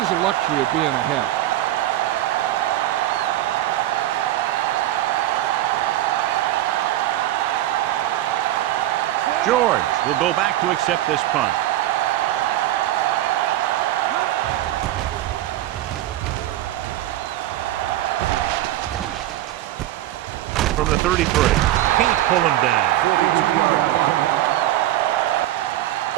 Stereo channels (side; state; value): left; quieter; 14.3 dB